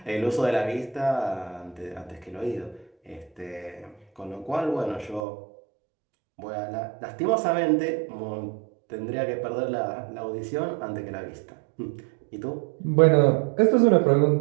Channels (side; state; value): left; drops out; at 5.2 s